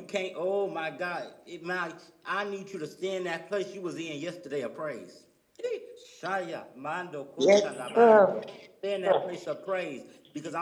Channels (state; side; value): identical; both; correlation 1.00